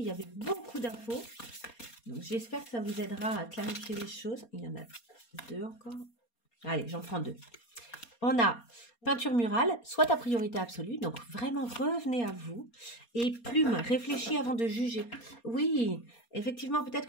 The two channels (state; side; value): late; right; 4.3 ms